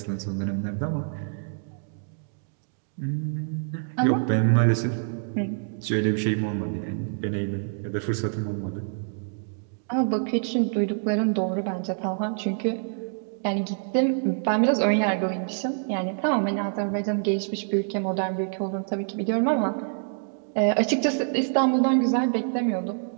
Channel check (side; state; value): left; silent; digital silence